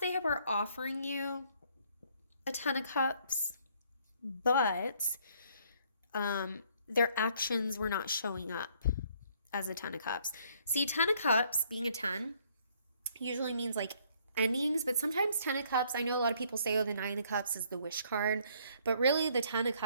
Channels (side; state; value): both; inverted; correlation -0.64